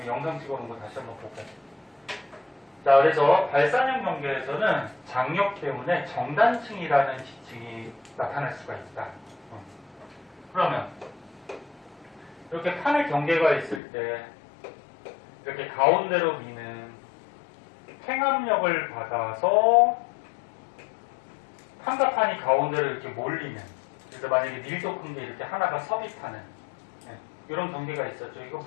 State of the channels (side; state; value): right; drops out; at 13.8 s